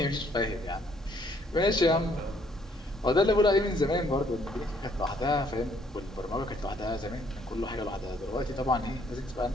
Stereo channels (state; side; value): normal; both; correlation 0.66